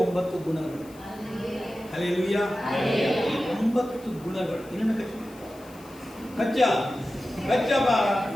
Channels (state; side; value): noise; left; hiss, 24 dB below the sound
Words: ಗುಣಗಳು. ಹಲ್ಲೆಲೂಯಾ. 9 ಗುಣಗಳು. ಇನ್ನೊಂದು ಕಚ್ಚಪ್ಪ,